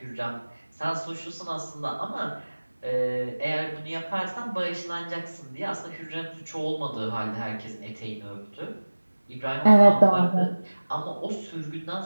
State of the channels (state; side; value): inverted; both; correlation -1.00